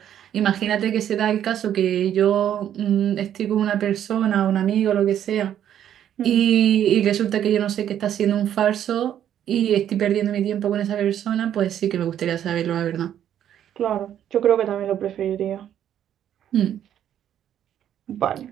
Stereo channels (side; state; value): left; quieter; 10.3 dB